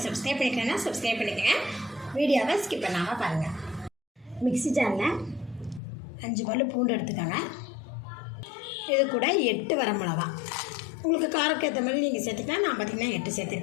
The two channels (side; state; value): right; drops out; at 5.8 s